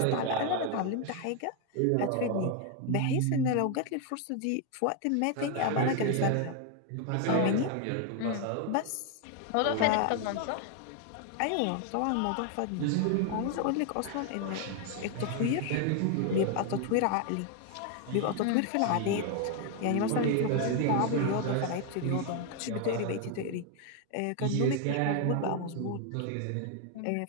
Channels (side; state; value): both; different; correlation 0.01